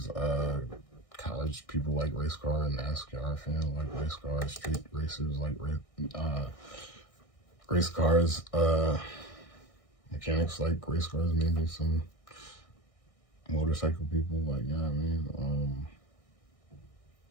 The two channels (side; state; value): right; late; 1.6 ms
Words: college people like race cars, NASCAR fans like race cars, street racers like race cars, mechanics like race cars, maybe some motorcycle people like, you know what I mean?